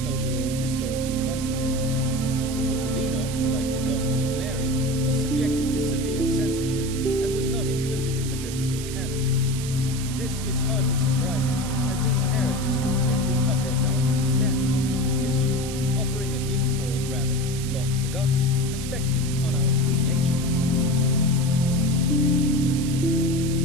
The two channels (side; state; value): right; noise; hiss, 10 dB below the sound